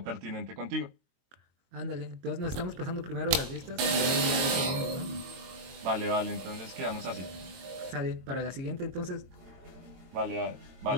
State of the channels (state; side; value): late; left; 22 ms